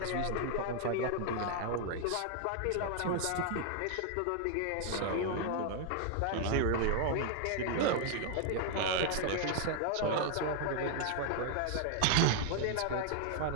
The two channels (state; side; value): different; both; correlation 0.00